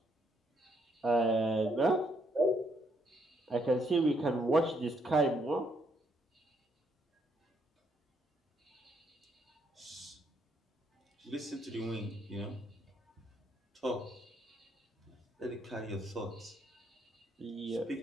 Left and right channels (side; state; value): both; normal; correlation 0.73